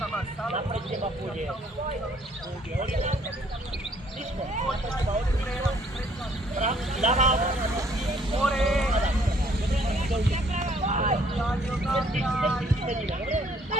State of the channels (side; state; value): both; normal; correlation 0.63